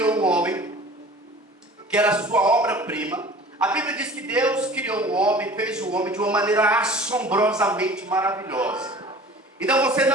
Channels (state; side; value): normal; both; correlation 0.43